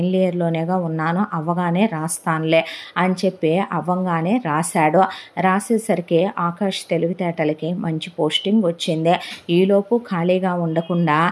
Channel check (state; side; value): identical; both; correlation 1.00